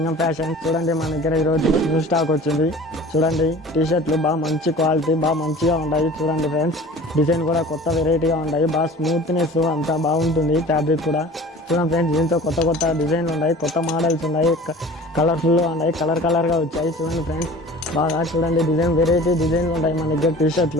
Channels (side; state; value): both; normal; correlation 0.43